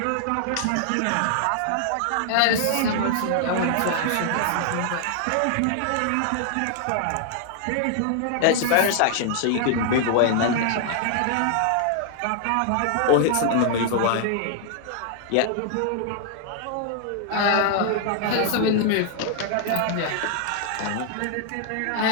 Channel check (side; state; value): both; different; correlation 0.00